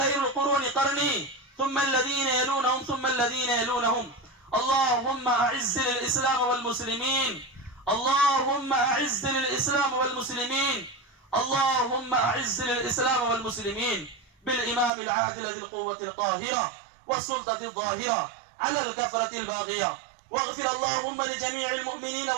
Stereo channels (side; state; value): left; drops out; at 14.9 s